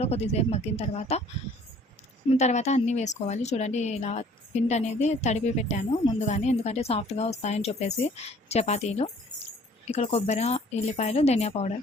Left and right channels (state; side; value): normal; both; correlation 0.55